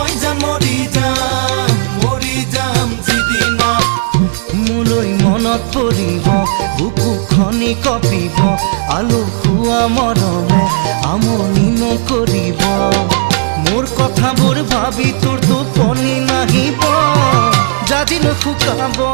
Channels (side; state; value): left; silent; digital silence